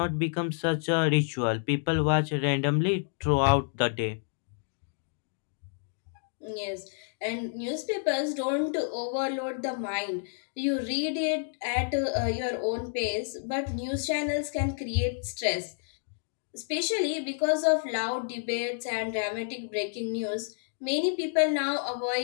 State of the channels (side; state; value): right; silent; digital silence